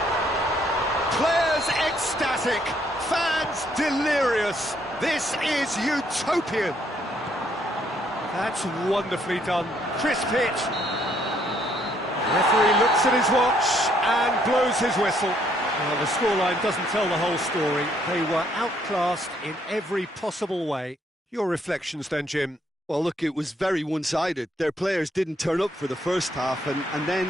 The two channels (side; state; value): both; normal; correlation 0.69